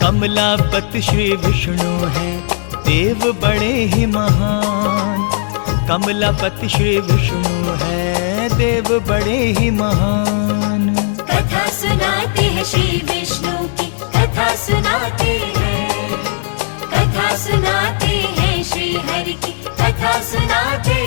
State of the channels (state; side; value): silent; right; digital silence